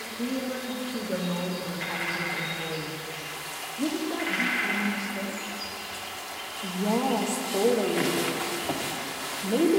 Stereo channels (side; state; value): both; identical; correlation 1.00